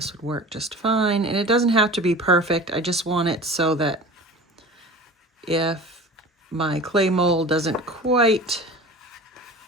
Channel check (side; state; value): both; normal; correlation 0.37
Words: would work just fine. And it doesn't have to be perfect. I just want it so that if my clay mold doesn't quite